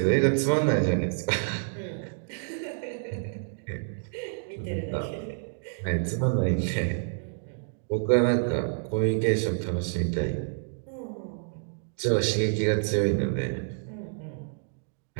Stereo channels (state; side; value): silent; left; digital silence